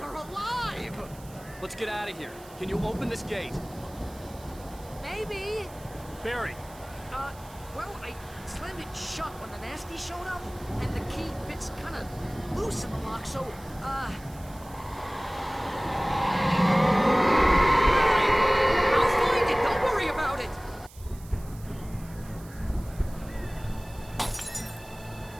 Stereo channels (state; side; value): noise; right; hiss, 22 dB below the sound